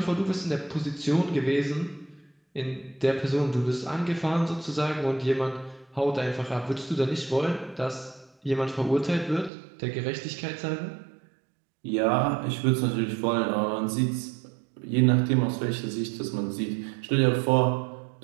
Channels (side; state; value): left; drops out; at 9.5 s